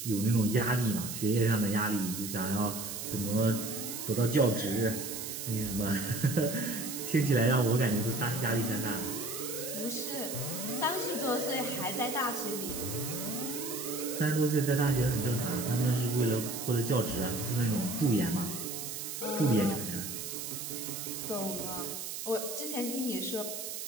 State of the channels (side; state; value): right; noise; hiss, 6 dB below the sound